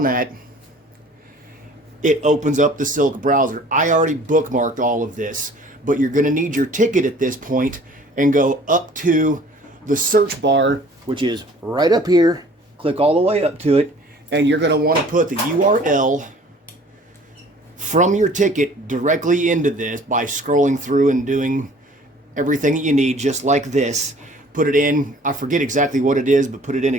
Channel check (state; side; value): normal; both; correlation 0.51